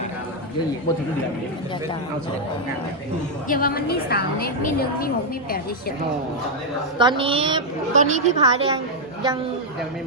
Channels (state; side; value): normal; both; correlation -0.01